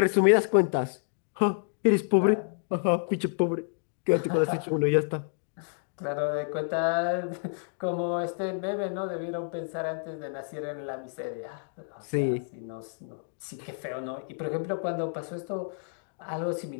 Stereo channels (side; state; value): right; silent; digital silence